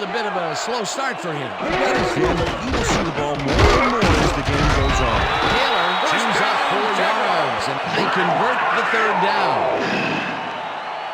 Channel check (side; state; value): both; identical; correlation 1.00